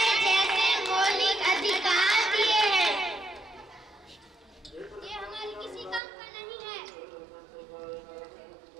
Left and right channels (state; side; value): drops out; left; at 6.0 s